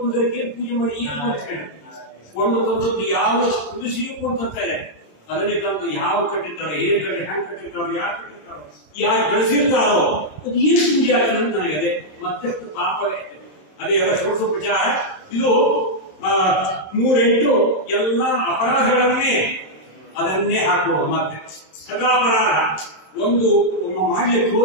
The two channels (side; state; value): right; late; 27 ms